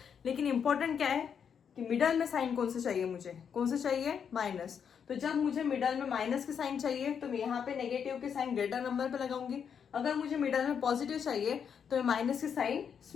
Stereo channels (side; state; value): right; quieter; 7.4 dB